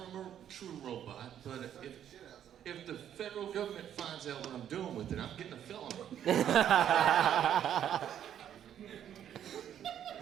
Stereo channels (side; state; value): left; quieter; 10.0 dB